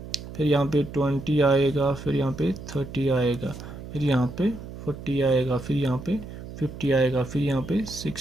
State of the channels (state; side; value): noise; right; hum, 12 dB below the sound